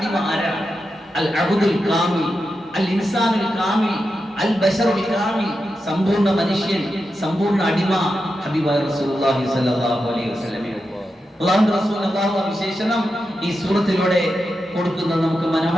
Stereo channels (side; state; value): both; normal; correlation 0.89